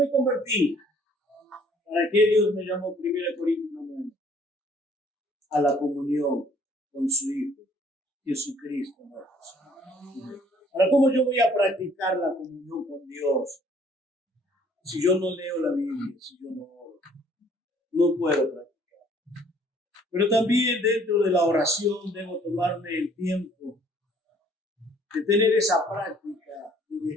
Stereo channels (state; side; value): normal; both; correlation 0.59